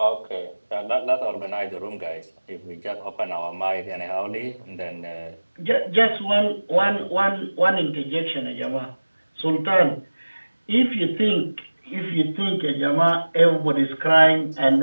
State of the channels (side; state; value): both; inverted; correlation -1.00